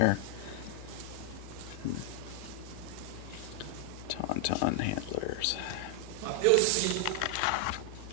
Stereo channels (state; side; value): different; both; correlation 0.00